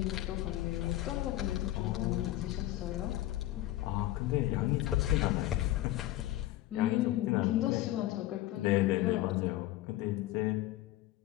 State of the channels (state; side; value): quieter; right; 15.3 dB